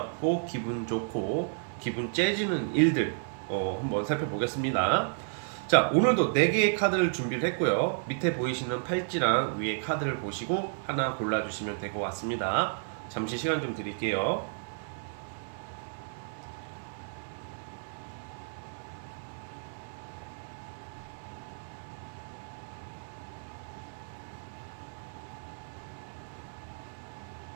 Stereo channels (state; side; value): silent; left; digital silence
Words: 기분 좋고 기분 째지는 일들 한번 살펴보겠습니다. 자, 오늘도 4개의 카드를 준비를 했고요. 밑에 보이시는 팔찌랑 위에 카드를 보시고 하나 골라주시면 될 것 같습니다. 잠시 시간 좀 드릴게요.